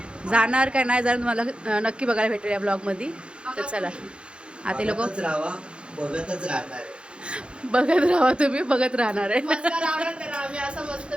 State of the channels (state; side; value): late; left; 0.056 ms